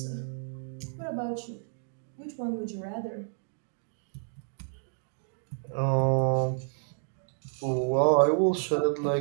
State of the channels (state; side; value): silent; left; digital silence